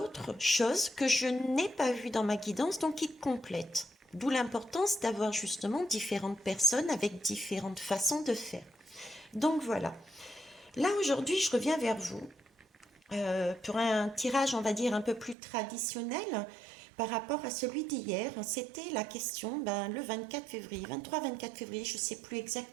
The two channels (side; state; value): left; drops out; at 15.4 s